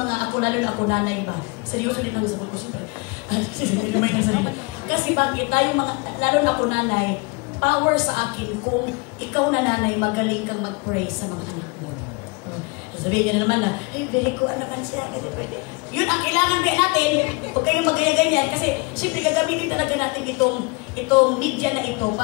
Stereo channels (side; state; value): right; quieter; 28.3 dB